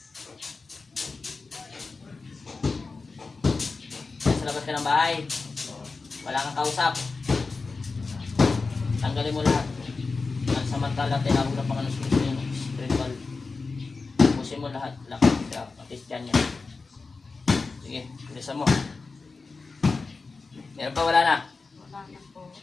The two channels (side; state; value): right; quieter; 4.1 dB